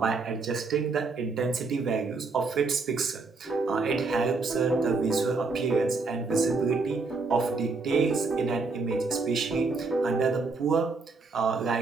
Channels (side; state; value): left; quieter; 4.1 dB